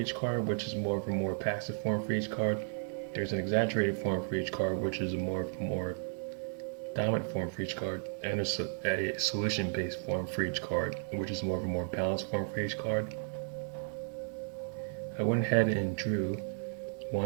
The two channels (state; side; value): silent; left; 55 dB below the other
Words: card, which is more of a more passive form for each card. There's an exaggerated form for each card, which is a more dominant form for each card, and a solution-based form for each card, which is more of a more balanced form for each card. I went ahead and drew